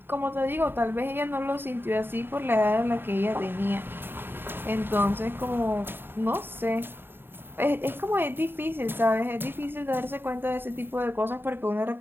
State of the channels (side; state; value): left; late; 0.10 ms